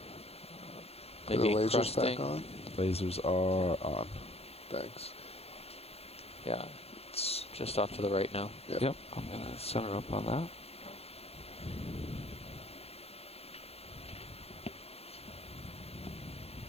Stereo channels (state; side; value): late; right; 0.29 ms